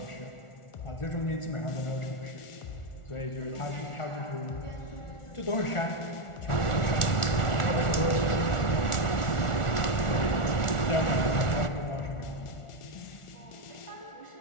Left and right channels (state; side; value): late; right; 1.4 ms